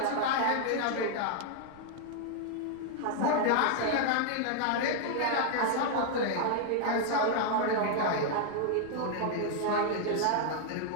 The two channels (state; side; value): different; both; correlation 0.00